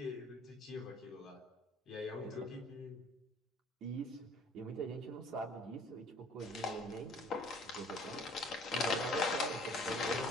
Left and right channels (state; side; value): normal; both; correlation 0.54